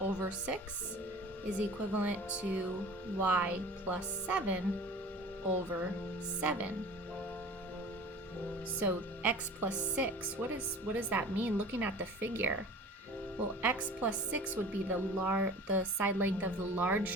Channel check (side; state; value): both; normal; correlation 0.41